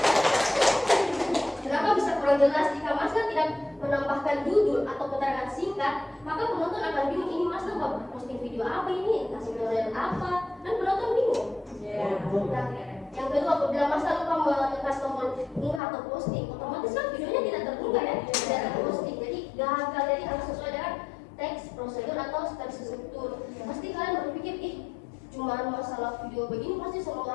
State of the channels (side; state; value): right; drops out; at 15.8 s